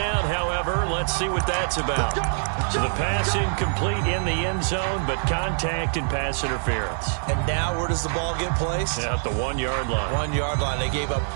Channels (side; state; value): left; silent; 62 dB below the other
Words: however. Let's see what that's about. So the pass incomplete in the end zone, but contact and pass interference. And now where does the ball get placed? At the 1-yard line. 1-yard line. They gave up